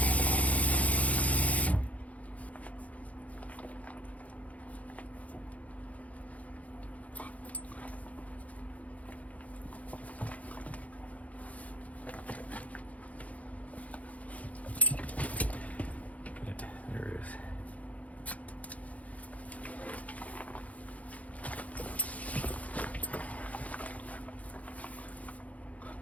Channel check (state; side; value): late; right; 0.069 ms